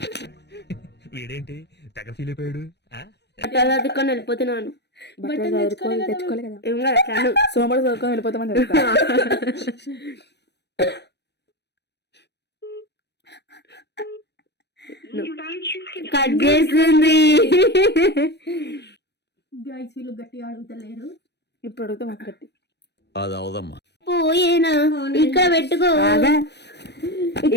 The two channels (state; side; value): late; right; 0.50 ms